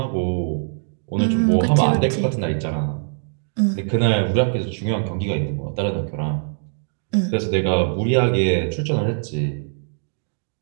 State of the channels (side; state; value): left; silent; digital silence